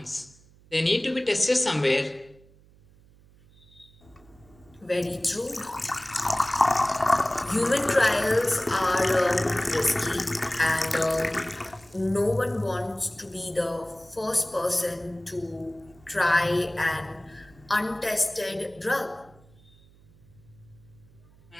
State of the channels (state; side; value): noise; right; hum, 27 dB below the sound